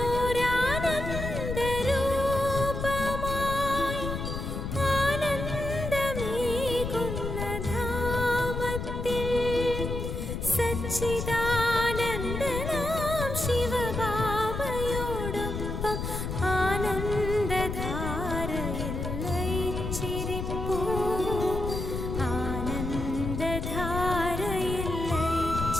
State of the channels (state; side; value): noise; left; rumble, 4 dB below the sound